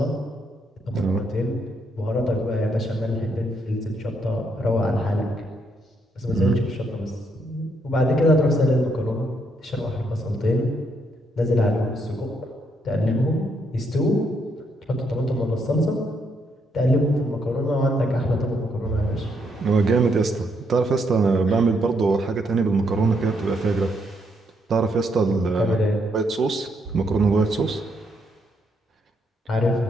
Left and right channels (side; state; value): both; normal; correlation 0.75